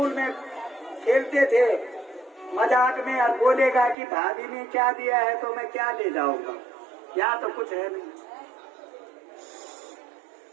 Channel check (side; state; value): left; drops out; at 4.0 s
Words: में खेलते थे मजाक में, और बोलेगा कि भाभी ने क्या दिया है तो मैं क्या ले जाऊंगा, यहाँ तो कुछ है नहीं।